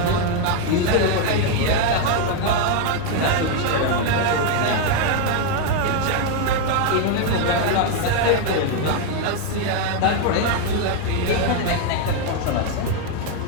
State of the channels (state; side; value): different; both; correlation 0.01